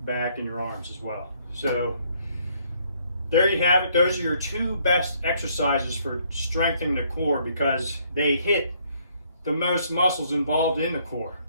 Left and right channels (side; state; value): both; inverted; correlation -0.67